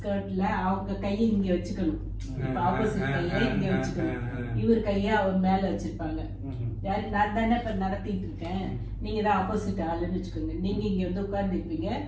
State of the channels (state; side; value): identical; both; correlation 1.00